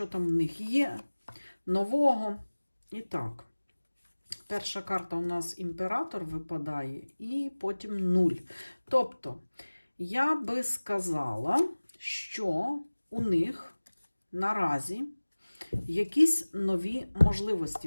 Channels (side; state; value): both; inverted; correlation -1.00